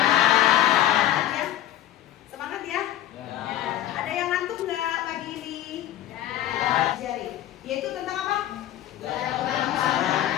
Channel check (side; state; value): right; quieter; 12.8 dB